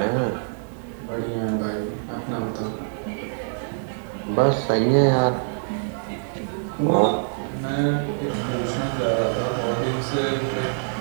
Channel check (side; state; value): left; silent; digital silence